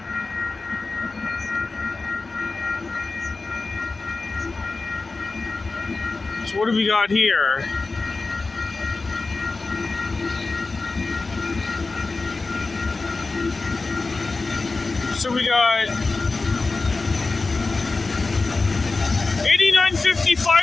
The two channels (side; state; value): right; quieter; 3.8 dB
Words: So what do we got here? So we got